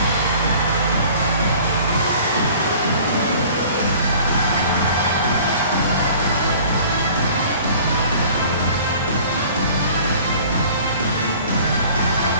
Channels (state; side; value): inverted; both; correlation -0.48